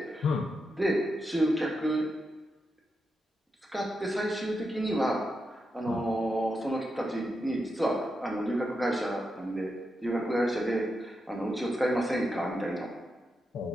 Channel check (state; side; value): normal; both; correlation 0.86